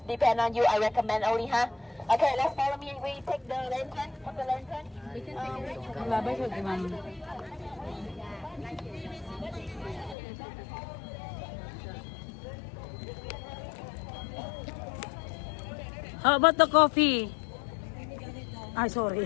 depend on you. I recommend only, huh? Okay, let's follow me. We take the lantern. Put the lantern. Labay sa di ma'am. How about the coffee? Ay,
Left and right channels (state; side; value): drops out; right; at 10.2 s